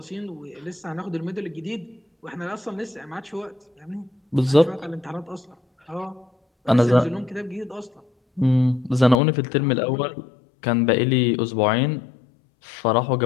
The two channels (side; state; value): right; drops out; at 9.2 s